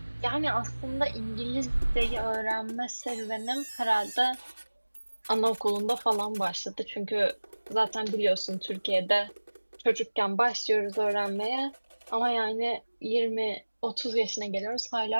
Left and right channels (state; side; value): inverted; both; correlation -1.00